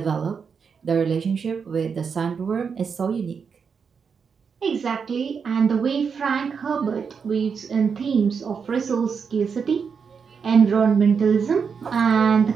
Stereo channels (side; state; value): left; quieter; 6.1 dB